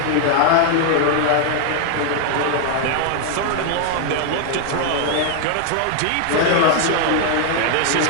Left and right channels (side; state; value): both; different; correlation 0.00